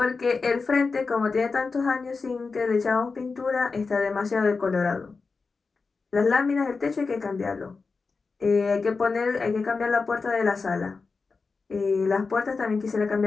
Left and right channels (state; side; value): quieter; right; 4.5 dB